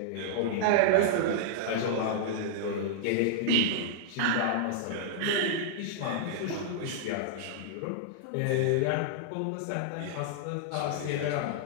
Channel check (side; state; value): both; different; correlation -0.02